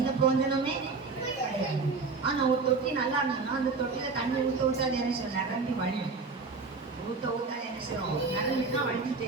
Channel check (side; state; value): left; quieter; 4.3 dB